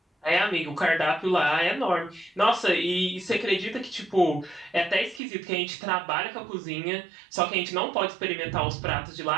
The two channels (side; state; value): left; drops out; at 5.2 s